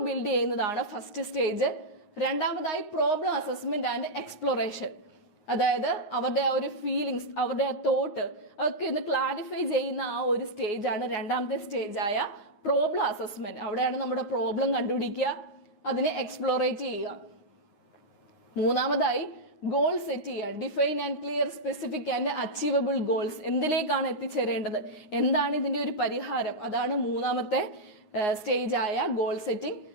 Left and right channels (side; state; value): right; late; 9.6 ms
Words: ബിൽഡ് ചെയ്യുന്നതാണ് ഫസ്റ്റ് സ്റ്റേജ്. രണ്ടാമതായി പ്രോബ്ലം അസസ്മെന്റ് ആൻഡ് എക്സ്പ്ലോറേഷൻ, അതായത് അവരുടെ ആ ഒരു ഫീലിങ്സ്, അവരുടെ ആ തോട്ട് അതൊക്കെ ഒന്ന് ക്ലാരിഫൈ ചെയ്യുന്ന ആ ഒരു സ്റ്റേജാണ് രണ്ടാമത്തെ സ്റ്റേജായ പ്രോബ്ലം അസസ്മെന്റ്. അവിടെയാണ് നമ്മുടെ പ്രോബ്ലം കണ്ടുപിടിക്കുക, അതിനെ എക്സ്പ്ലോറേറ്റ് ചെയ്യുക. മൂന്നാമതായി ഗോൾ സെറ്റ് ചെയ്യുക, define and clear specific and achievable goals. എന്തിലേക്കാണ് എത്തിച്ചേരേണ്ടത്, എന്താണ് ഇതിന്റെ ഒരു പരിഹാരം, അതാണ് മൂന്നാമത്തെ സ്റ്റേജായ ഗോൾ സെറ്റിംഗ്.